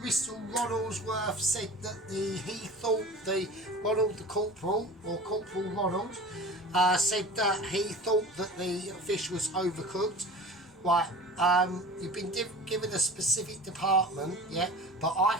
Bristol Ronaldsworth said that he thought the corporal Ronald, said that he thought that the fish was overcooked. Right, you've been given a specific department, yeah, but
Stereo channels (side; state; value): both; normal; correlation 0.37